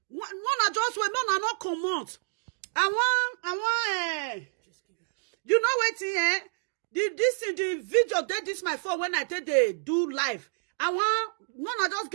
One just wait, no, not come out. I want, you know what, the video, this my phone when I take they do live. I want, just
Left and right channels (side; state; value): left; silent; digital silence